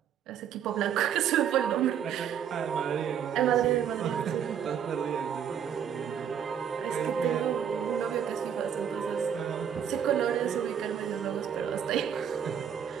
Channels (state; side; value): quieter; left; 8.5 dB